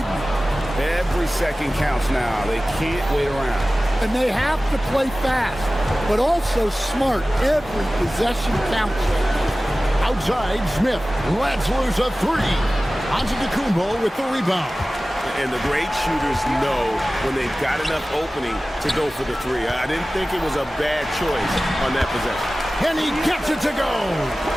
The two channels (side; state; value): both; normal; correlation 0.97